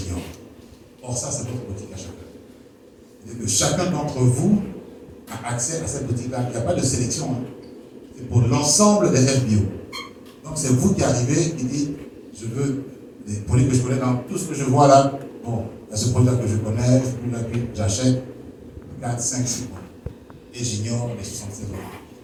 Or, ça, c'est votre boutique à chacun. C'est-à-dire que chacun d'entre vous a accès à cette boutique-là. Il n'y a pas de sélection. Hein. C'est pour l'ensemble des FBO. Donc, c'est vous qui arrivez et dites, je veux des produits que je connais dans tout ce que je vois là. Bon, il y a ce produit-là que je connais, j'achète 4, 5, 6 mois. Et j'ignore les 76 autres.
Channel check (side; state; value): both; identical; correlation 1.00